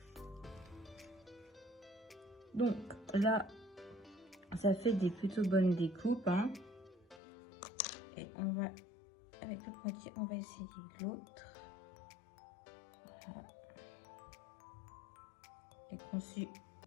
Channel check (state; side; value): drops out; right; at 7.2 s